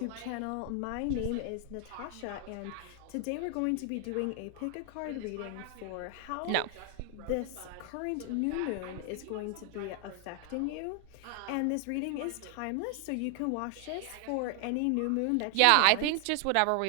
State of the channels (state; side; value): different; both; correlation 0.00